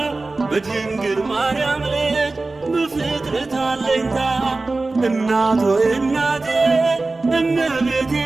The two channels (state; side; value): quieter; left; 3.4 dB